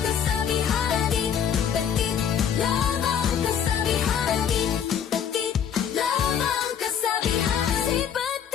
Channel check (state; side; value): quieter; right; 8.3 dB